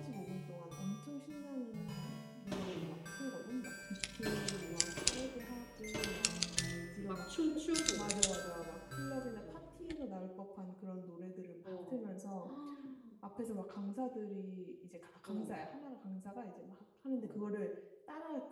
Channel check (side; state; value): both; identical; correlation 1.00